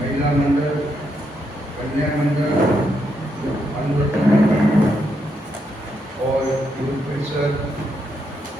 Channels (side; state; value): both; normal; correlation 0.79